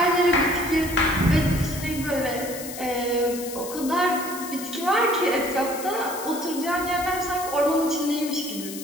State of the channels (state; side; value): noise; left; hiss, 11 dB below the sound